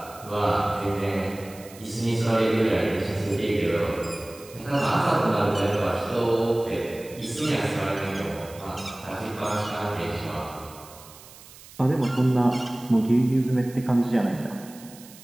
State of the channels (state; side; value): noise; right; hiss, 20 dB below the sound